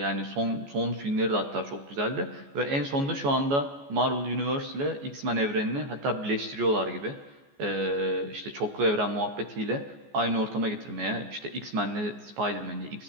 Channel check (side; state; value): left; late; 14 ms